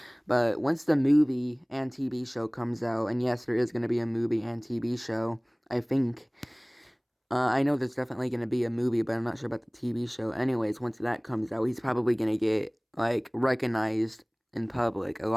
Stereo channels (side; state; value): both; identical; correlation 1.00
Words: But once the movie and TV show comes out, and yes, there is going to be a movie and TV show, I think. I know there's definitely going to be a movie, but I'm not sure about the TV show. Anyways, once that comes out, he's probably going to get, like, recognized in public a